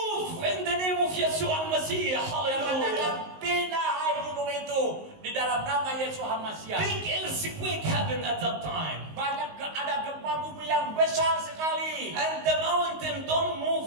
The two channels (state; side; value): late; left; 19 ms